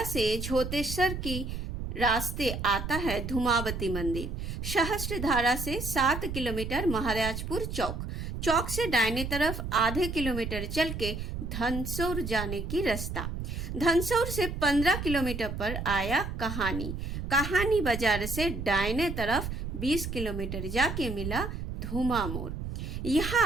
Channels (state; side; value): noise; right; rumble, 5 dB below the sound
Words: से झोतेश्वर की रास्ते आता है धूमावती मंदिर। सहस्त्रधारा से 7 किलोमीटर महाराजपुर चौक। चौक से दाहिने तरफ आधे किलोमीटर चल के धनसौर जाने की रास्ता। धनसौर से 15 किलोमीटर पर आया कहानी। कहानी बाजार से दाहिने तरफ 20 किलोमीटर जाके मिला धूमा मोड़।